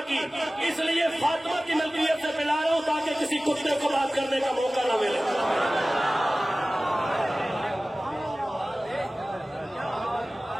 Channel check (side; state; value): both; normal; correlation 0.97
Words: کی، اس لیے فاطمہ کی ملکیت سے پلا رہا ہوں تاکہ کسی کتے کو بات کرنے کا موقع نہ ملے۔